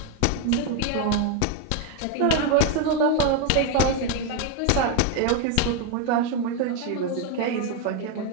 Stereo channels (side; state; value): both; different; correlation 0.01